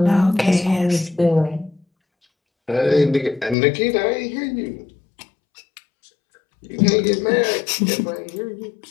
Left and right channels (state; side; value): drops out; right; at 3.6 s